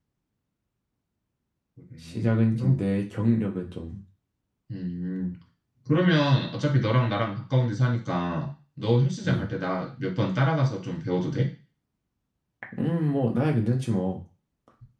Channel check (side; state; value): both; identical; correlation 1.00